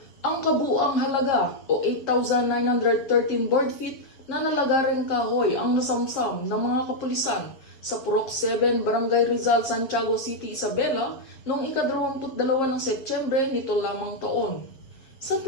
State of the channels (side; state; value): right; late; 7.6 ms